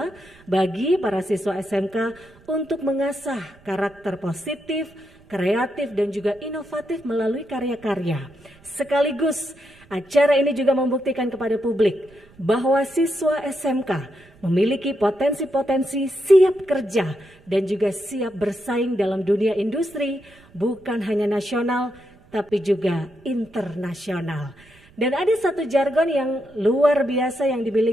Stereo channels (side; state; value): right; noise; rumble, 27 dB below the sound